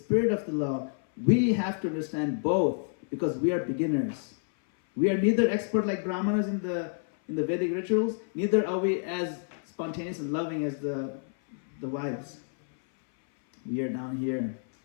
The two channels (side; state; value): right; silent; 59 dB below the other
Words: of the law. We have to understand both because we are beginners. We are neither expert like Brahmanas in the Vedic rituals, neither are we as spontaneous and loving as the wives. We are down here.